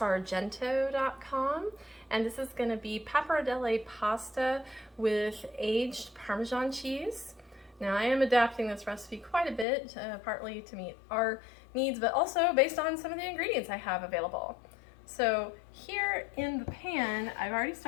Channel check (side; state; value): right; drops out; at 9.7 s